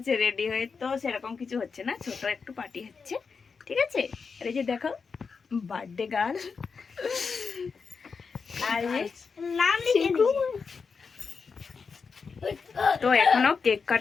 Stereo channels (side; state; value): right; quieter; 5.3 dB